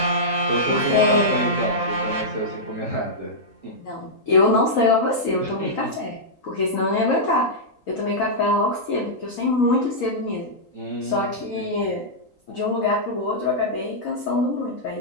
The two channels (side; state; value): right; late; 3.8 ms